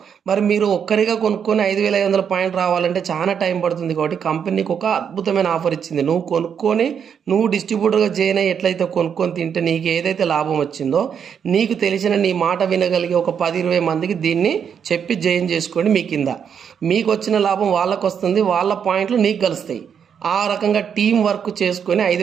మరి మీరు ఒక్కరిగా కొనుక్కొని 5,500 పాయింట్లు రావాలంటే చాలా టైం పడుతుంది. కాబట్టి కంపెనీకి ఒక అద్భుతమైన ఆఫర్ ఇచ్చింది. నువ్వు కొనుక్కొని నువ్వు డిస్ట్రిబ్యూటర్గా జాయిన్ అయ్యి ఎట్లయితే కొనుక్కొని తింటే నీకు ఏదైతే లాభం వచ్చిందో, నీకు తెలిసిన నీ మాట వినగలిగే ఒక 10-20 మందికి దీన్ని చెప్పి జాయిన్ చేసుకోండి. మీ కింద మీకు వచ్చిన లాభం వాళ్ళకు వస్తుంది, వాళ్ళ పాయింట్లు నీకు కలుస్తాయి. ఆ రకంగా టీం వర్క్ చేసుకొని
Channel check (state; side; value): quieter; left; 7.6 dB